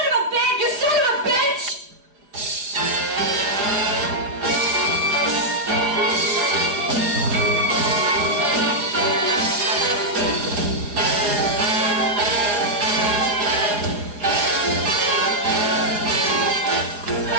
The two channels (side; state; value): left; late; 4.9 ms